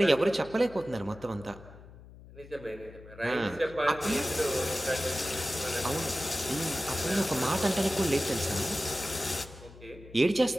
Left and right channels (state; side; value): noise; left; hum, 19 dB below the sound